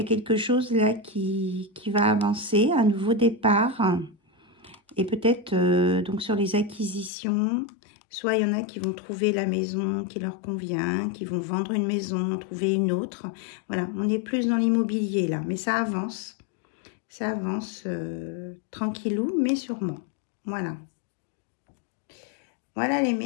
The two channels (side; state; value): right; drops out; at 7.1 s